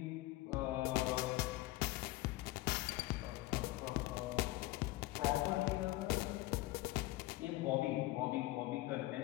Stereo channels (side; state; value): right; quieter; 18.0 dB